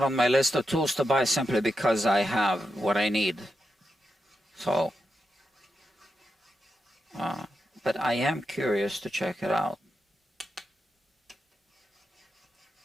on my list of tools to buy simply because I have what I need. So, but I am curious to check it out.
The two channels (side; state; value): both; normal; correlation 0.86